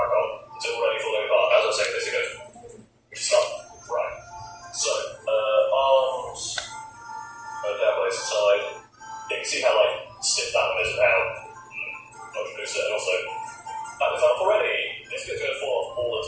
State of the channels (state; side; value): identical; both; correlation 1.00